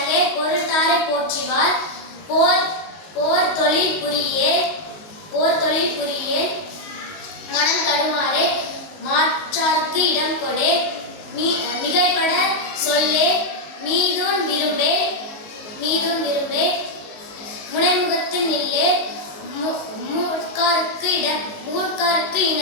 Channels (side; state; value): right; late; 19 ms